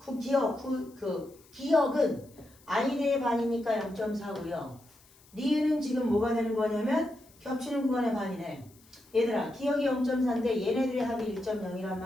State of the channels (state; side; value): noise; left; hiss, 28 dB below the sound